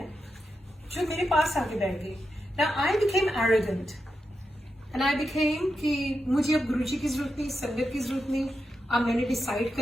जो मेरे पास आके बैठ गई. Now I became arrogant. And I became कि मुझे अब गुरुजी की जरूरत नहीं, संगत की जरूरत नहीं. अब मैंने डिसाइड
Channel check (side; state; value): both; normal; correlation 0.87